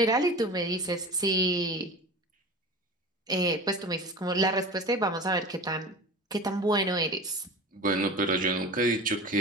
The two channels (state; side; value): normal; both; correlation 0.34